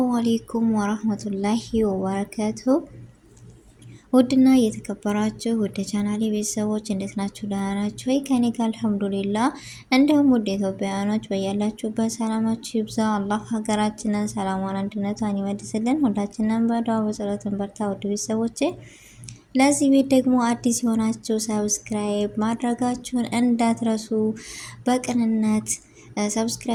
አሌይኩም ወራህመቱላሂ ወበረከቱ። ውድና እየተከበራችሁ ወደ ቻናሌ ቤተሰቦች እንዴት ናችሁ? ደህና ናችሁ ወይ? ከኔ ጋር አልሐምዱሊላ። እንዲሁም ውድ ኢትዮጵያውያኖች በያላችሁበት ሰላማችሁ ይብዛ። አላህ ሀገራችንን ሰላሟን፣ አንድነቷን ይመልስልን። ሁላችንም በዱዓ በጸሎትን በርታ። ውድ ቤተሰቦቼ ለዚህ ቤት ደግሞ አዲስ የሆናችሁ ሰብስክራይብ ማድረጋችሁን እንዳትረሱ። በቅንነት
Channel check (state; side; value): identical; both; correlation 1.00